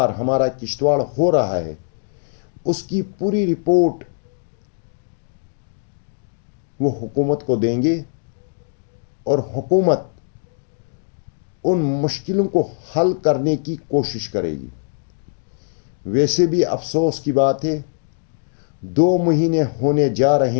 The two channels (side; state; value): right; silent; digital silence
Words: ہمارا کشتواڑ ہو رہا ہے، اس کی پوری رپورٹ وہ حکومت کو دیں گے اور حکومت ان مشکلوں کو حل کرنے کی کوشش کرے گی۔ ویسے بھی افسوس کی بات ہے، 2 مہینے ہونے جا